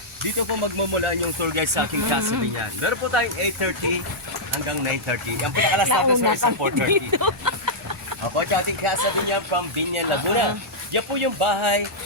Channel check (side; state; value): both; normal; correlation -0.08